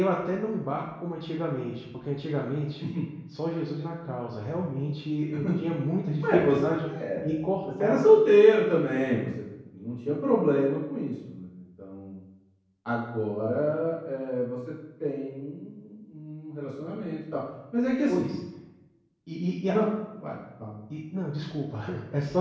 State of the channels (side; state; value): both; identical; correlation 1.00